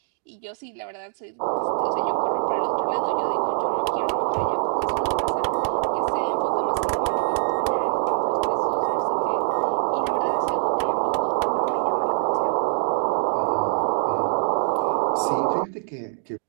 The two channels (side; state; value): left; silent; digital silence